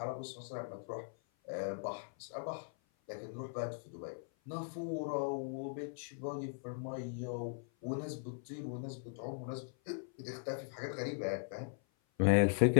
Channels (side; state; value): right; silent; 51 dB below the other